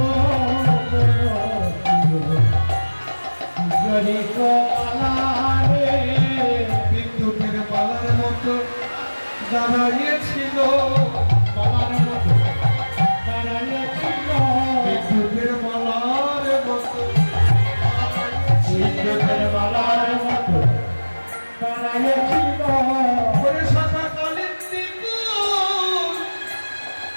যদি কোমারে বিদ্যুতের মালার মতো দাঁড়িয়েছিল, মালার মতো দাঁড়াইয়াছিল, বিদ্যুতের মালার মতো বিদ্যুতের মালার মতো দাঁড়াইয়াছিল, ওরে শাখা কালিন্দী কুল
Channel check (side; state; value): both; inverted; correlation -1.00